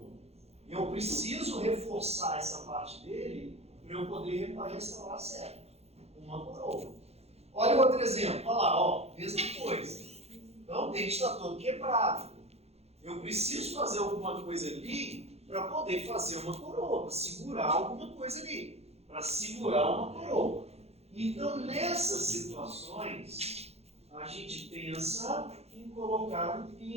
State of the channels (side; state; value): left; late; 0.30 ms